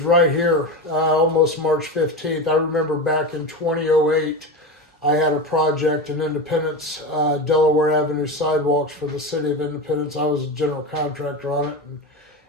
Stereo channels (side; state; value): both; normal; correlation 0.22